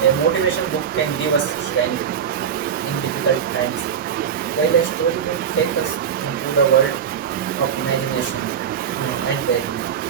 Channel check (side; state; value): left; quieter; 7.9 dB